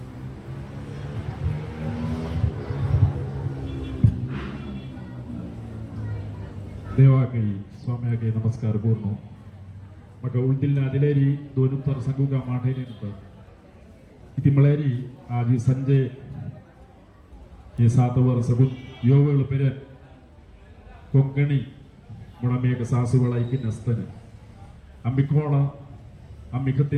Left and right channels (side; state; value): both; identical; correlation 1.00